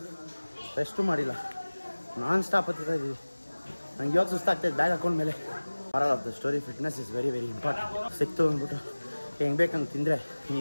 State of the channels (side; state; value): both; inverted; correlation -1.00